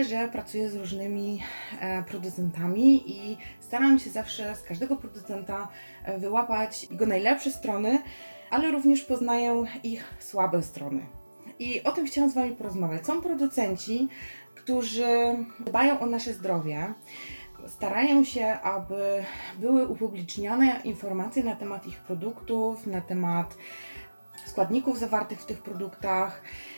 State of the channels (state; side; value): inverted; both; correlation -1.00